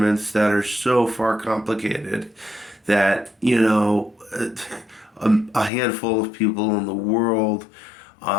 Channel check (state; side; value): drops out; right; at 5.7 s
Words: that are so far complicated that, a handful of people in the world